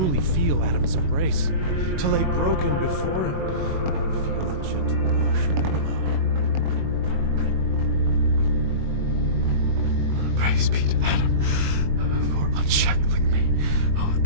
feel Adam's embrace, to lay broken before him, feel the gentle wash of the blood. Praise be to Adam for unshackling me. Oh,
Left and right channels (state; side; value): late; left; 21 ms